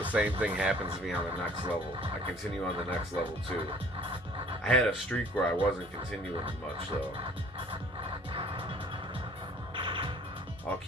same thing happens to me on the next level. I continue on the next level too. I had a streak where I wasn't continuing much though. I'll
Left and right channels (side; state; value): both; normal; correlation 0.54